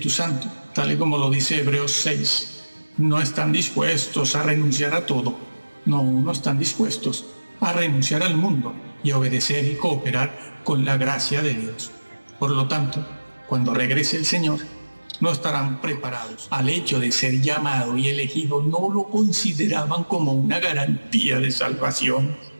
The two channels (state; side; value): inverted; both; correlation -1.00